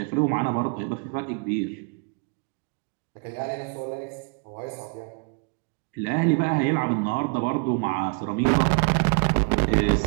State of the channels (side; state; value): left; quieter; 36.1 dB